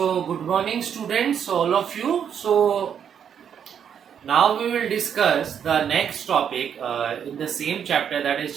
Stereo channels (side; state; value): left; quieter; 8.2 dB